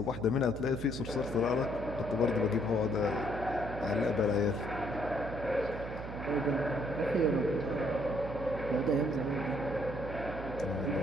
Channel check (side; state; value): right; noise; hum, 8 dB below the sound